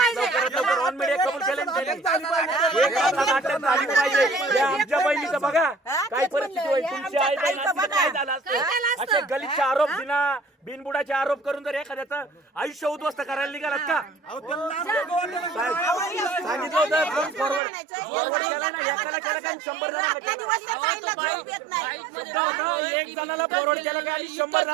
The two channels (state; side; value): drops out; left; at 17.6 s